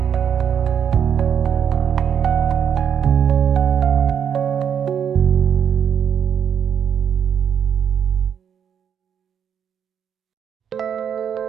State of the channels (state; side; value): quieter; left; 8.2 dB